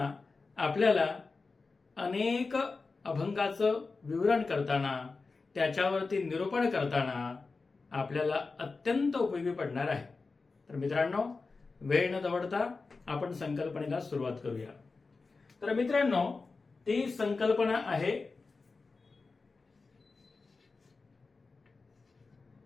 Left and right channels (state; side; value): quieter; right; 4.1 dB